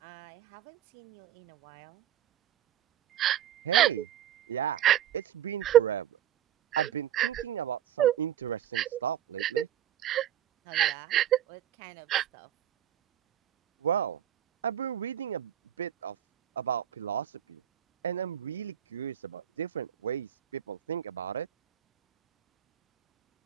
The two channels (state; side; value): quieter; left; 10.8 dB